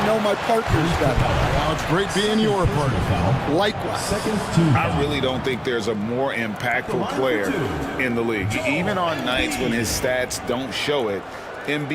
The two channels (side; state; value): both; identical; correlation 1.00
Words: know my partners better. Well, it's great being your partner. Likewise. I really don't think there's a more impactful player in the league. Even on nights when his stats don't show it,